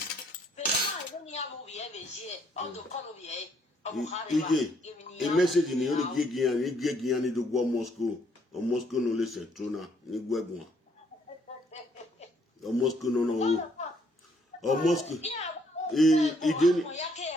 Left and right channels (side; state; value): both; normal; correlation 0.68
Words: pero ma ni amu vie veje o do kono vie o khare a message ni ori gegian ni do go Moscow o Moscow no le se trona ni gwegun o Moscow no o Moscow